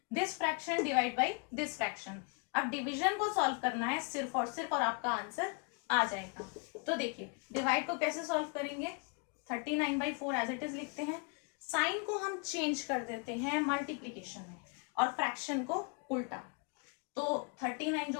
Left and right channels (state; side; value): quieter; right; 35.7 dB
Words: this fraction divide by this fraction. अब डिवीजन को सॉल्व करना है सिर्फ और सिर्फ, और आपका आंसर आ जाएगा। तो देखिए डिवाइड को कैसे सॉल्व करेंगे, 39/4 एज इट इज लिखते हैं। साइन को हम चेंज कर देते हैं मल्टीप्लीकेशन में, और फ्रैक्शन को उल्टा। तो 39 जो